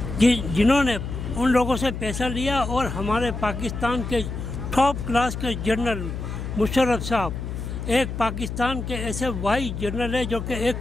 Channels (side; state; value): left; noise; hum, 6 dB below the sound